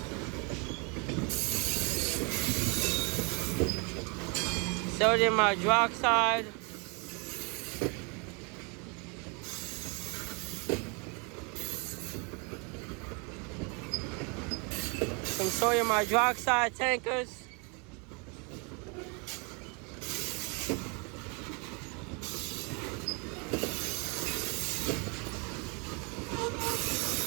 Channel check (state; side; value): quieter; left; 33.1 dB